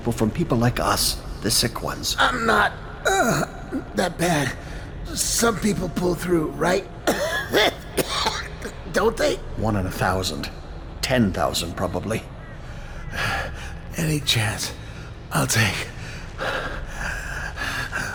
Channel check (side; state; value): both; identical; correlation 1.00